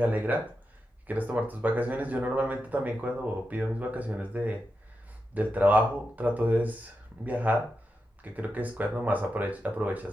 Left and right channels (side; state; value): both; normal; correlation 0.88